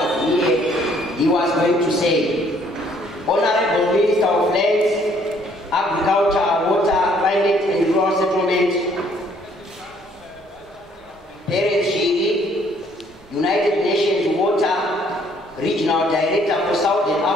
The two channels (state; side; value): normal; both; correlation 0.63